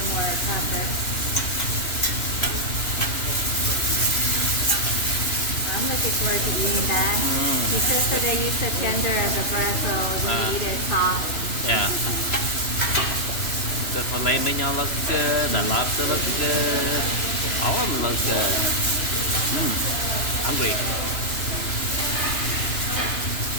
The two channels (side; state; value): right; late; 3.0 ms